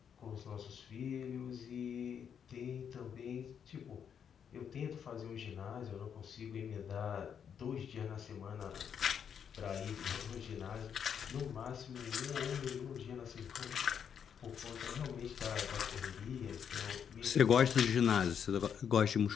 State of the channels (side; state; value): right; quieter; 7.8 dB